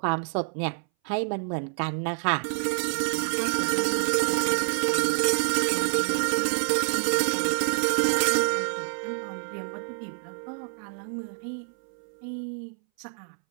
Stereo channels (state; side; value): silent; left; 60 dB below the other